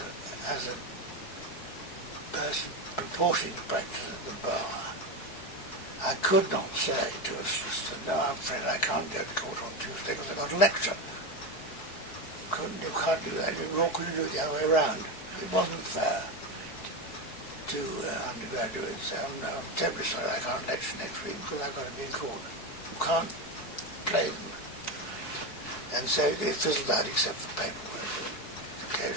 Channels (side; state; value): right; late; 4.7 ms